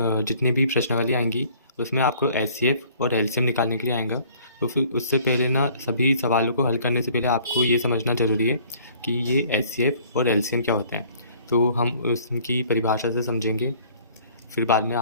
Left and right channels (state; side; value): inverted; both; correlation -0.55